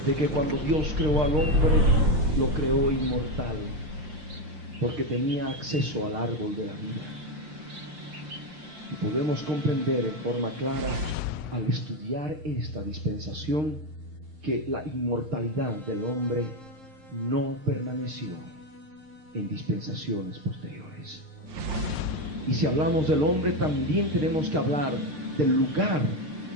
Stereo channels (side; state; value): left; late; 5.7 ms